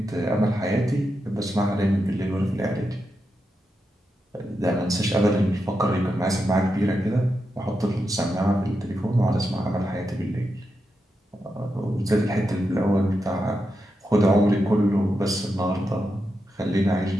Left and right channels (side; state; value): both; normal; correlation 0.87